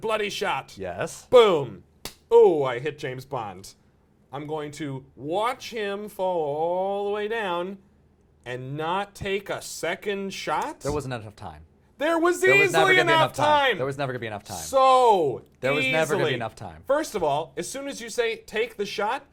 shot. Yes. Boom. Oh, I hit James Bond. I'm going to watch him fall all the way down and not take a second shot. There wasn't enough time. There was easily enough time. There was never going to be enough time. So There was easily. never going to be enough time. First of all, as soon as you say take the shot,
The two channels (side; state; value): both; identical; correlation 1.00